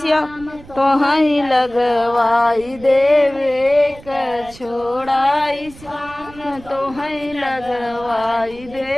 श्याम तो है लगवाई देव एक छोड़ाई श्याम तो है लगवाई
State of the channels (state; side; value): noise; right; rumble, 20 dB below the sound